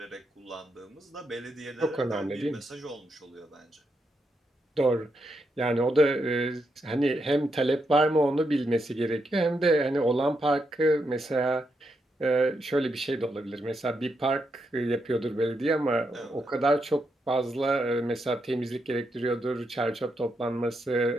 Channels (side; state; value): both; normal; correlation 0.82